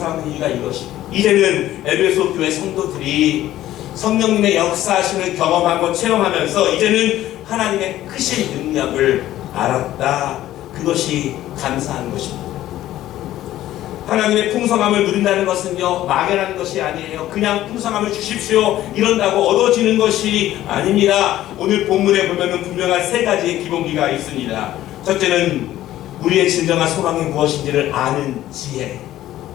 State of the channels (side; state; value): right; quieter; 13.9 dB